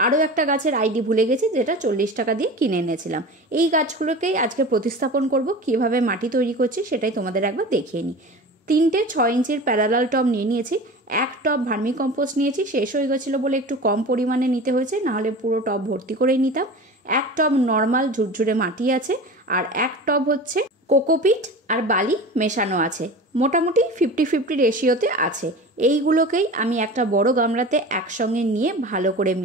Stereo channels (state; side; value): normal; both; correlation 0.34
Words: আরও একটা গাছের আইডি ভুলে গেছি, যেটা 40 টাকা দিয়ে কিনে এনেছিলাম। এই গাছগুলোকেই আজকে প্রতিস্থাপন করব। কীভাবে মাটি তৈরি করছি সেটাই তোমাদের একবার দেখিয়ে নিই। 3টে 6 ইঞ্চির প্যারালাল টব নিয়ে নিয়েছি। এক টব ভার্মি কম্পোস্ট নিয়েছি, শেষ হয়ে গেছিলো বলে একটু কম পরিমাণে নিতে হয়েছে, নাহলে পুরো টব ভর্তি করেই নিতাম। এক টব নর্মাল ঝুরঝুরে মাটি আছে, আর এক টব হচ্ছে কোকোপিট আর বালি মেশানো আছে। মোটামুটি 50-50 রেশিওতে আছে। এইগুলোকেই আমি একটা বড় গামলাতে একসঙ্গে নিয়ে ভালো করে